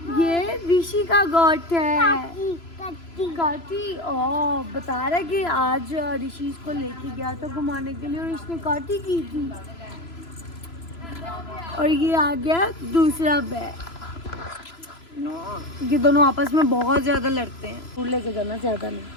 ये ऋषि का गोट है। काटी। ओ बता रहा है कि आज ऋषि इसको लेके गया था घुमाने के लिए और इसने काटी की थी। और ये आ गया दूसरा बैग। ये दोनों आपस में बहुत ज्यादा लड़ते हैं। फूल लेके जाना, ज्यादा नहीं।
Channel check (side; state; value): right; late; 3.0 ms